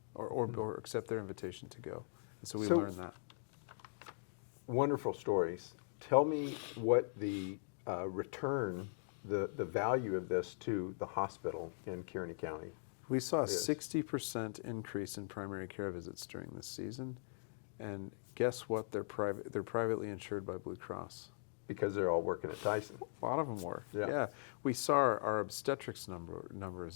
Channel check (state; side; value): silent; right; digital silence